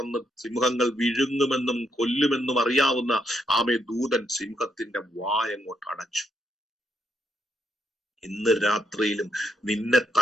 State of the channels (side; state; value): both; normal; correlation 0.77